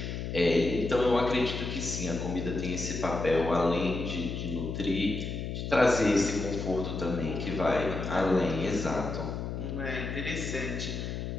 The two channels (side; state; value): left; noise; hum, 4 dB below the sound